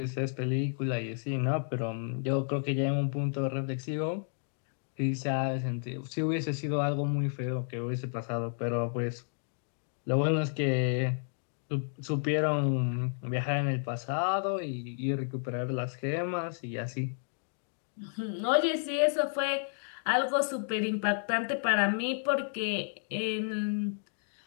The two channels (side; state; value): right; silent; digital silence